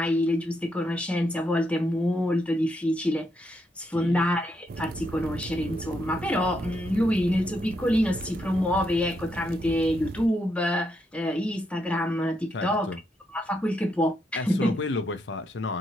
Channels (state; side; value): normal; both; correlation 0.79